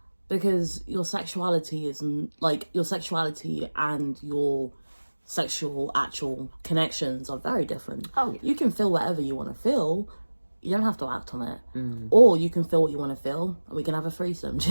because your sexuality is like your sexuality and your sexual actual connections are very different. Oh, yeah. You can feel whatever you want to feel. You don't have to act on it. Or you can feel what you want to feel and we can have a threesome. Do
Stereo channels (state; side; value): inverted; both; correlation -1.00